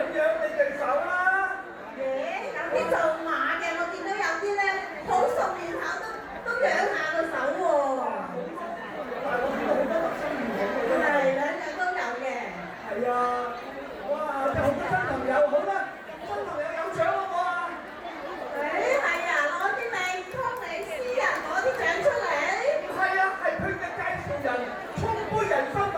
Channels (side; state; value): both; identical; correlation 1.00